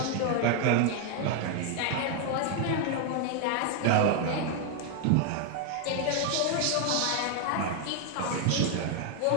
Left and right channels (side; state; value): both; different; correlation 0.00